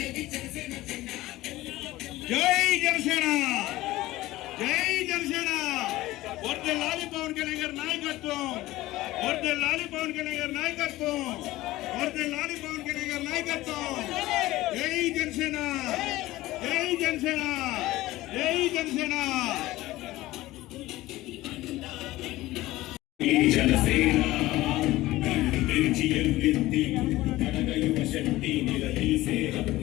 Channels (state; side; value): quieter; right; 17.4 dB